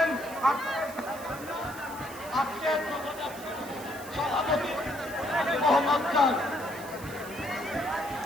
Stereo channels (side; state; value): right; noise; hiss, 16 dB below the sound